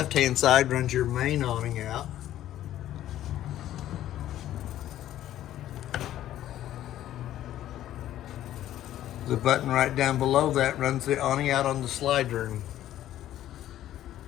side runs your main awning out. The button right down below that runs the awning out on the slide room.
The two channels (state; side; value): quieter; right; 12.7 dB